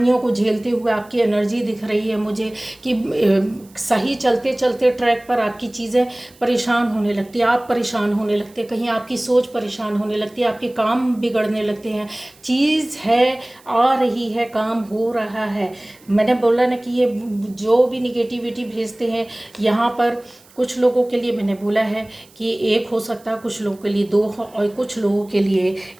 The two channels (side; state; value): right; noise; hiss, 27 dB below the sound